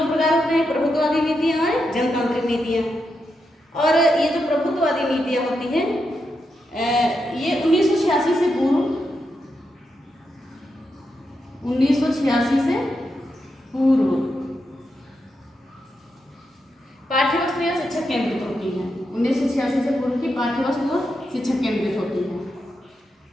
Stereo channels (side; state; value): both; normal; correlation 0.85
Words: प्रकार होते हैं, प्रभुत्ववादी नीतियां और जनतांत्रिक नीतियां। और ये जो प्रभुत्ववादी नीतियां होती हैं, ये 1986 से पूर्व 1986 से पूर्व पाठ्यवस्तु या शिक्षक केंद्रित होती है। 1986 से पूर्व की पाठ्यवस्तु शिक्षक केंद्रित होती है।